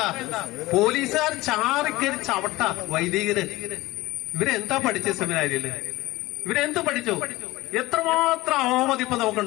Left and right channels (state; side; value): quieter; right; 19.1 dB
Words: പോലീസുകാർ ചാറിക്കരി ചവിട്ട വൈദികര്. ഇവരെന്താ പഠിച്ച സെമിനാരിയില്? ഇവരെന്ത് പഠിച്ചു? എത്രമാത്രം അവമതിപ്പ്